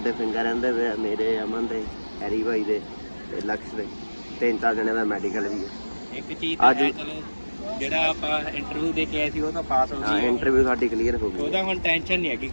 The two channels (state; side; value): inverted; both; correlation -1.00